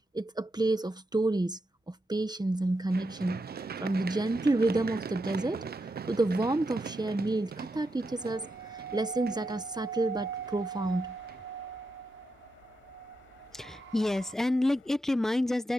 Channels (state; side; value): normal; both; correlation 0.85